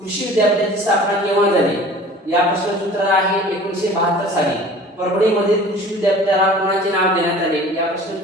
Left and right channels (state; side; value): normal; both; correlation 0.44